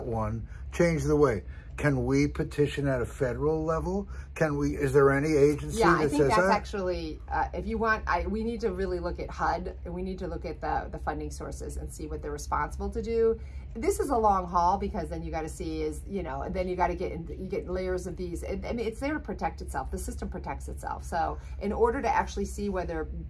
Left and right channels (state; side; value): identical; both; correlation 1.00